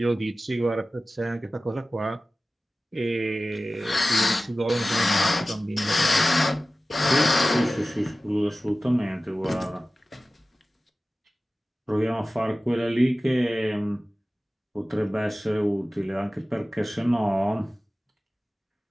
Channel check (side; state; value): both; normal; correlation 0.96